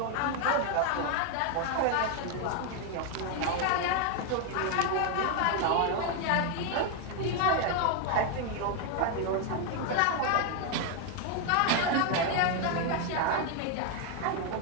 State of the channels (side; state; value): both; different; correlation 0.01